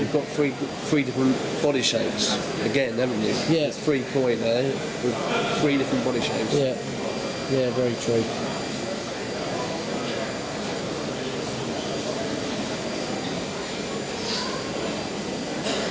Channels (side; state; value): both; identical; correlation 1.00